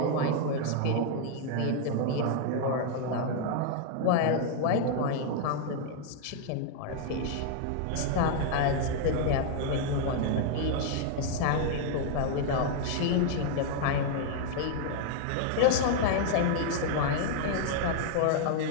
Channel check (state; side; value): different; both; correlation 0.00